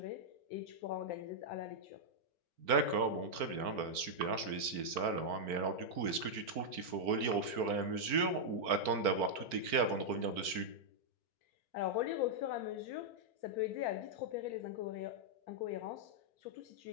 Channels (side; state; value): left; late; 4.4 ms